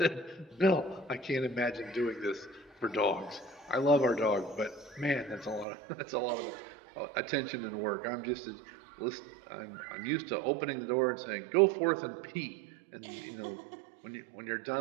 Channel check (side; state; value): left; drops out; at 5.7 s